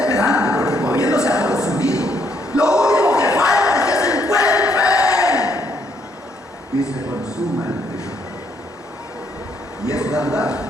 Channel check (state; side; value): normal; both; correlation 0.71